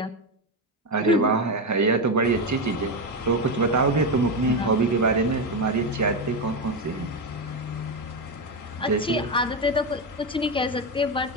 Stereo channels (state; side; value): normal; both; correlation 0.11